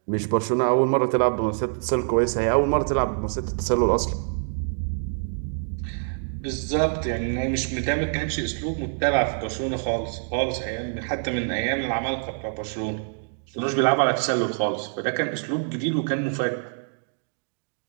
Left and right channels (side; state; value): left; silent; digital silence